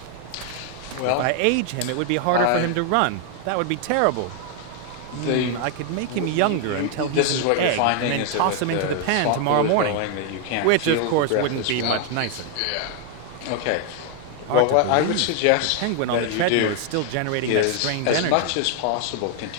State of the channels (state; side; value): different; both; correlation 0.00